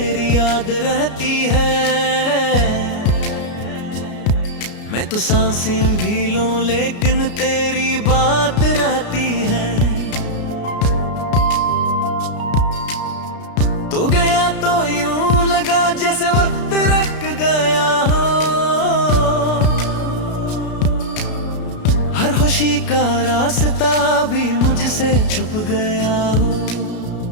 याद रहती है। मैं तो सांसें भी लूं लेकिन तेरी बात रहती है। तू गया तो यूं लगा जैसे वक्त रुक गया हो, हर खुशी का रास्ता भी मुझसे छुप गया हो।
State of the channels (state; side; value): late; right; 33 ms